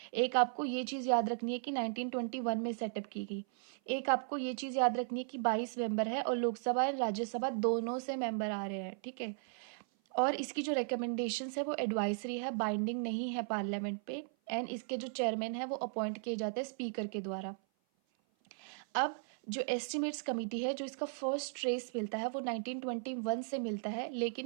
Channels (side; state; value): left; silent; 53 dB below the other